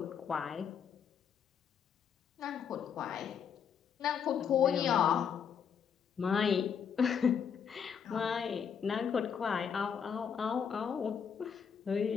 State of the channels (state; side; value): quieter; right; 7.4 dB